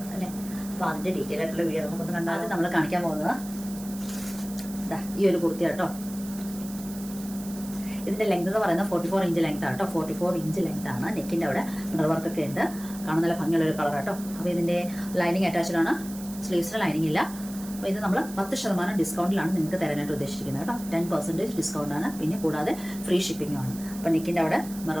അല്ലേ. അപ്പോൾ അതിന്റെ ഡീറ്റെയിൽ ആയിട്ടുള്ള വീഡിയോ നമുക്കൊന്ന് കണ്ടാൽ നമ്മൾ കാണിക്കാൻ പോകുന്നത് ഈ ഒരു കുർത്തി കേട്ടോ. ഇതിന്റെ ലെങ്ത് എന്ന് പറയുന്നത് 44 ഇഞ്ച് ലെങ്ത് ആട്ടോ. 44 ഇഞ്ച് ലെങ്ത് ആണ്. നെക്കിന്റെ അവിടെ മിറർ വർക്ക് ഒക്കെ ഉണ്ട്. കാണാൻ നല്ല ഭംഗിയുള്ള ഒരു കളർ ആട്ടോ. അപ്പോൾ ഇതിന്റെ ലൈനിങ് അറ്റാച്ച്ഡ് ആണ്. സ്ലീവ്സിന് ലൈനിങ് ഇല്ല. അപ്പോൾ ഇത് നമ്മൾ 10% ഡിസ്കൗണ്ടിലാണ് നിങ്ങൾക്ക് തരാനായിട്ട് ഉദ്ദേശിച്ചിരിക്കുന്നത് കേട്ടോ. 10% ഡിസ്കൗണ്ട് ആണ്. പിന്നെ കൂടാതെ ഫ്രീ ഷിപ്പിംഗും ആണ്. അപ്പോൾ നെക്കിന്റെ അവിടെ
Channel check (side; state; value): right; noise; hiss, 15 dB below the sound